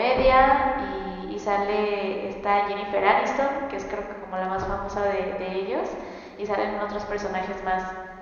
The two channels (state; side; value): identical; both; correlation 1.00